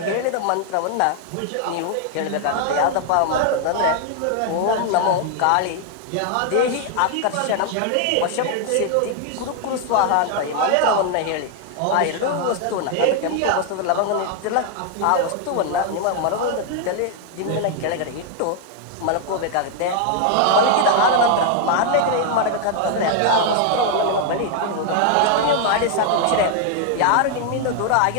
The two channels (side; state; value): both; different; correlation 0.00